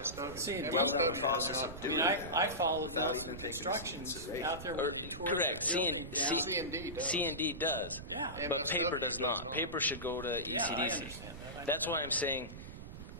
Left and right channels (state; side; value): noise; right; rumble, 11 dB below the sound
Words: C&D. the process of doing it. I followed without those even taking instructions consideration. out there. Or, when we tore correct. the building down. C&D does. C&D does. Yeah. But paper does not. Paper should go to Yeah, I ECDC. understand that. That's why I'm saying,